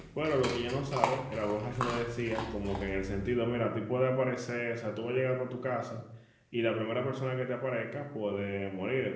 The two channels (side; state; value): both; identical; correlation 1.00